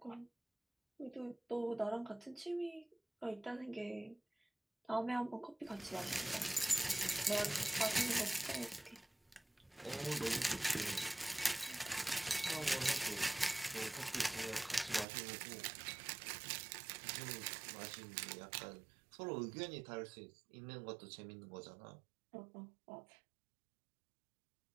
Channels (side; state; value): left; drops out; at 15.1 s